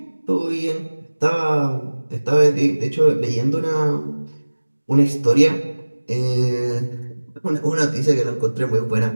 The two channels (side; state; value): both; inverted; correlation -1.00